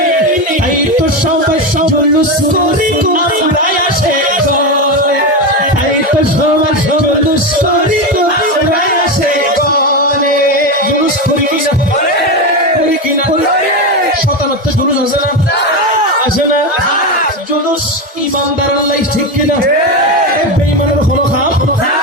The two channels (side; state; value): both; normal; correlation 0.14